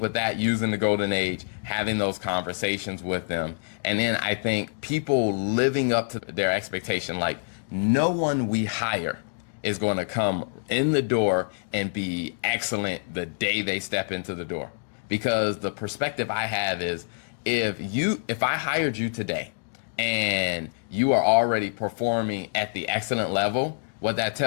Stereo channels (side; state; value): right; silent; digital silence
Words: with that, using the golden age, having those conversations with them. And then I think people living up to their expectation, like no one we hire is going to come in the door and be excellent the day they step into the door. Because the perspective I have is if I hired you today and you are already performing at the excellent level, what that